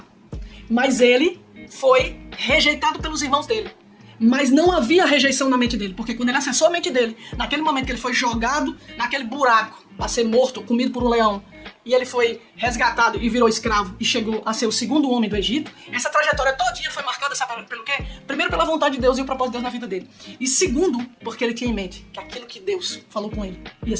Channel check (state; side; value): identical; both; correlation 1.00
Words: Mas ele foi rejeitado pelos irmãos dele. Mas não havia rejeição na mente dele, porque quando ele acessou a mente dele, naquele momento que ele foi jogado naquele buraco para ser morto, comido por um leão, e ele foi resgatado e virou escravo e chegou a ser o segundo homem do Egito, essa trajetória todinha foi marcada, sabe pelo quê? Primeiro, pela vontade de Deus e o propósito de Deus na vida dele. E segundo, porque ele tinha em mente que aquilo que Deus falou com ele ia